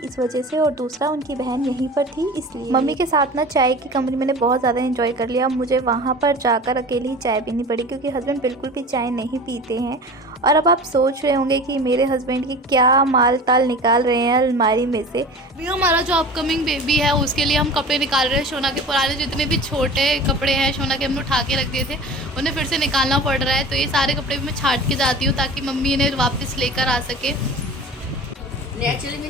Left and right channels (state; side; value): normal; both; correlation 0.37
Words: वजह से और दूसरा उनकी बहन यहीं पर थी इसलिए। मम्मी के साथ ना चाय की कमरे मैंने बहुत ज़्यादा इन्जॉय कर लिया। मुझे वहाँ पर जाकर अकेले ही चाय पीनी पड़ी क्योंकि हस्बैंड बिल्कुल भी चाय नहीं पीते हैं। और अब आप सोच रहे होंगे कि मेरे हस्बैंड की क्या माल ताल निकाल रहे हैं अलमारी में से। अभी हमारा जो अपकमिंग बेबी है उसके लिए हम कपड़े निकाल रहे हैं। सोना के पुराने जितने भी छोटे कपड़े हैं सोना के हमने उठा के रख दिए थे, उन्हें फिर से निकालना पड़ रहा है। तो ये सारे कपड़े भी मैं छाट के जाती हूँ ताकि मम्मी इन्हें वापस लेकर आ सके। नेचुरली